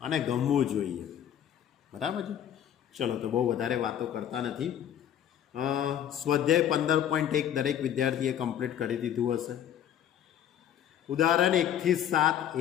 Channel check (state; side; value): quieter; right; 10.0 dB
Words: ગમવું જોઈએ, બરાબર છે. ચલો, તો બહુ વધારે વાતો કરતા નથી. સ્વાધ્યાય 15.1 દરેક વિદ્યાર્થીએ કમ્પ્લીટ કરી દીધું હશે. ઉદાહરણ 1 થી 7